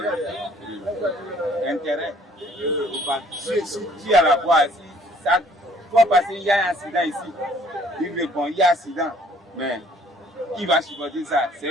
intérêt. Si tu es à la voie, si ça doit passer, il y a un accident ici. Il répond, il y a un accident. Mais qui va supporter ça? C'est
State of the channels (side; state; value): both; normal; correlation 0.59